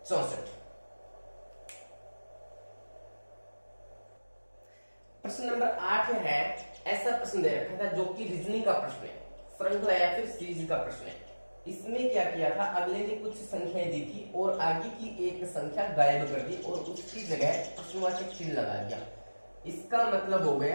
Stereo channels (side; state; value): both; inverted; correlation -1.00